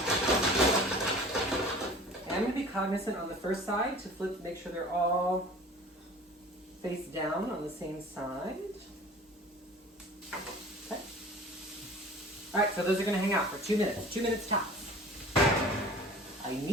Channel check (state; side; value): normal; both; correlation 0.44